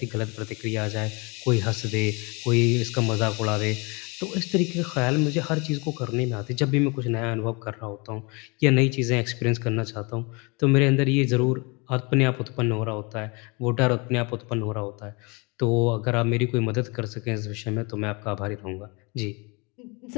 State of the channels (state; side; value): quieter; right; 29.5 dB